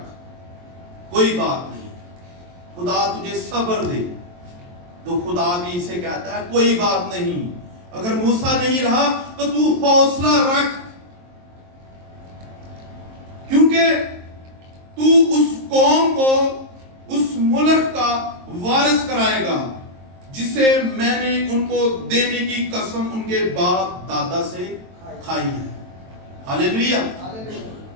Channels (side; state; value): left; late; 23 ms